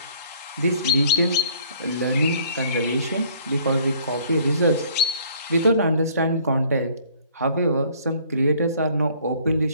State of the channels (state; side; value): inverted; both; correlation -0.58